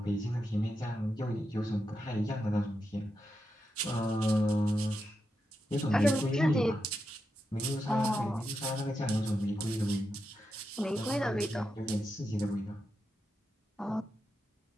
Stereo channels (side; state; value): both; normal; correlation 0.87